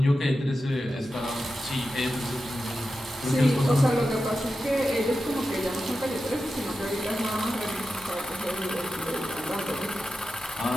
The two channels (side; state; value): both; normal; correlation 0.91